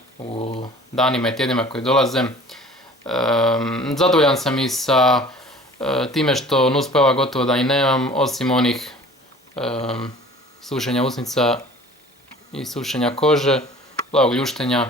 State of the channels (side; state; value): both; normal; correlation 0.46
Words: u danima i tjednima koji dolaze. Zadovoljan sam i sa time što nuspojava gotovo da i nemam, osim onih sušenja usnica i sušenja kože, plavog